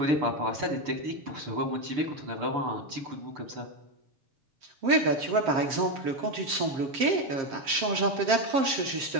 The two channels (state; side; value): late; left; 7.5 ms